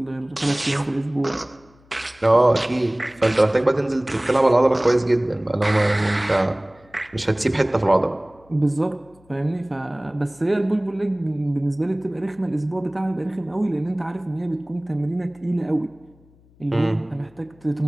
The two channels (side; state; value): left; noise; hum, 29 dB below the sound